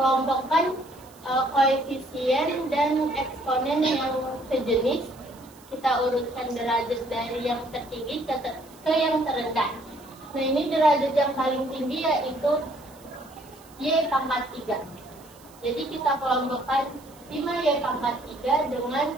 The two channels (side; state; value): right; noise; hiss, 25 dB below the sound